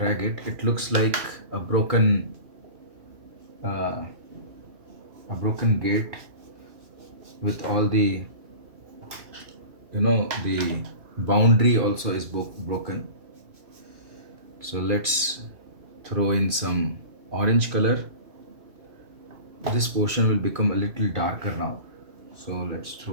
it. It looks like a broken gate with all the, the boundary also is broken. So let's throw in some orange color. This portion will become a little darker now, so let's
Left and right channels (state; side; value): late; left; 2.8 ms